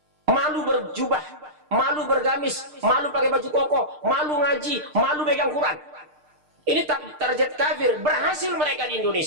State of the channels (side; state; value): left; late; 6.6 ms